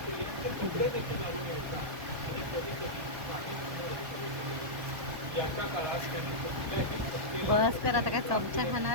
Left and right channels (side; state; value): left; late; 1.2 ms